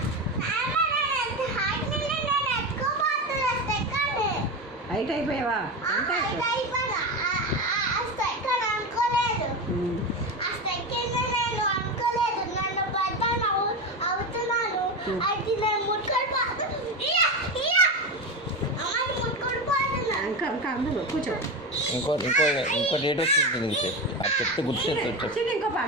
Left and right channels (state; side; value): normal; both; correlation 0.19